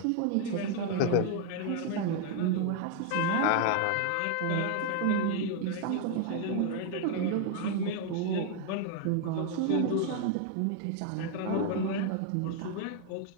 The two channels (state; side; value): different; both; correlation 0.00